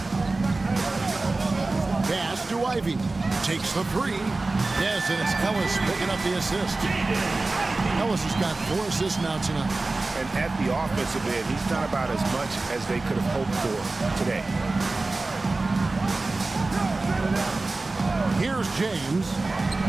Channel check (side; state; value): left; quieter; 3.3 dB